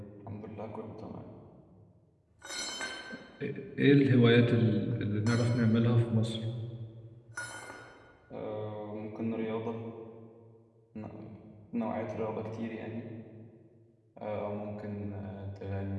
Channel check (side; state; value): both; identical; correlation 1.00